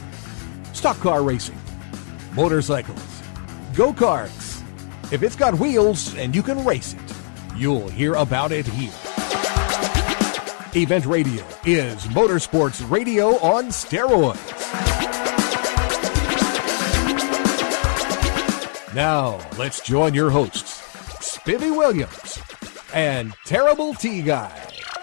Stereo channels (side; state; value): right; silent; 62 dB below the other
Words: stock car racing, motorcycles, go-karts. If it's got wheels and you can race it, you'll hear about it here. Event Radio is motorsports radio on steroids. Now, let's join your hosts, Spivvy Williams and Terrible T Guy.